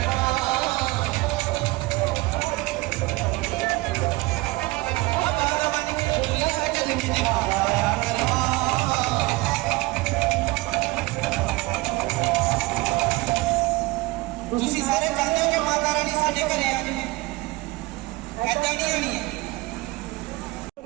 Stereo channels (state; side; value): quieter; left; 21.8 dB